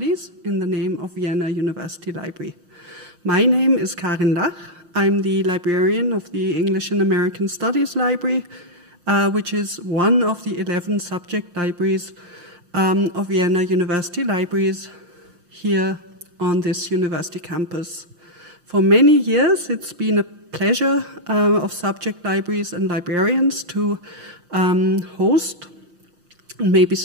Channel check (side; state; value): left; late; 6.4 ms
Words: in the name of Vienna University Library. My name is Karin Lach. I'm the librarian of the English and American Studies Library, which is one of the 11 subject libraries of Vienna University Libraries here on this university campus. For many years, it's been a pleasure of subject libraries and librarians to host, maybe